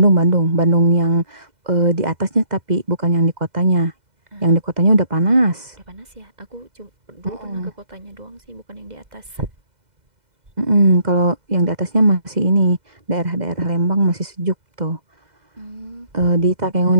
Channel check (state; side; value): late; left; 2.0 ms